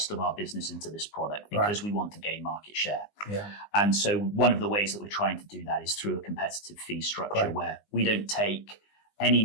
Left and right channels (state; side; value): late; right; 19 ms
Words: of our business into this product, because we want to gain market share. Yeah. And so one of the ways that we're trying to do that is through a competitive fee structure where we don't take any